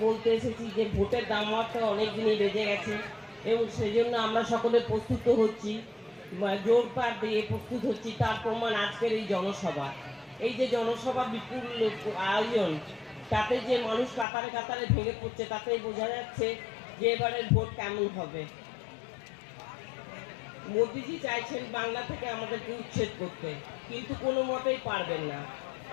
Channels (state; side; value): drops out; right; at 14.2 s